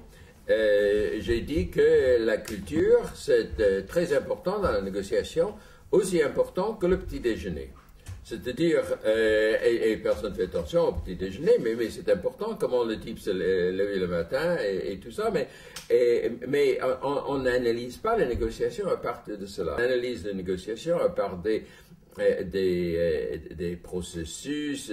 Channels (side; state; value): both; identical; correlation 1.00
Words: J'ai dit que la culture, c'est très important dans la négociation, aussi important que le petit déjeuner. C'est-à-dire, et personne ne fait attention au petit déjeuner, mais c'est important comment le type se lève le matin et tout ça, mais on n'analyse pas la négociation à partir de cela. On analyse la négociation à partir des processus,